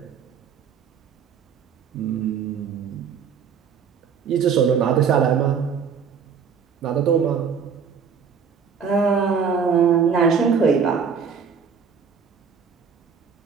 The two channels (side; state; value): left; quieter; 6.5 dB